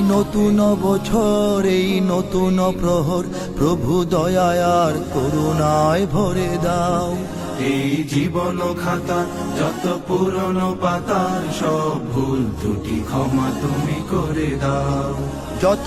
নতুন বছর, এই নতুন প্রহর, প্রভু দয়া আর করুণায় ভরে দাও। এই জীবন খাতার যত পুরনো পাতার সব ভুল ত্রুটি ক্ষমা তুমি করে দাও। যত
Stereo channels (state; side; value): identical; both; correlation 1.00